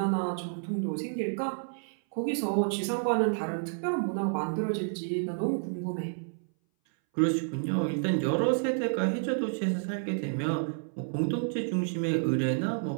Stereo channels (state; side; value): silent; left; 58 dB below the other